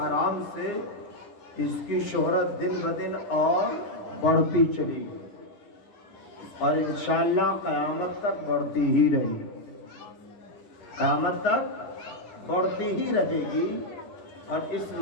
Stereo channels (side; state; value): right; late; 10 ms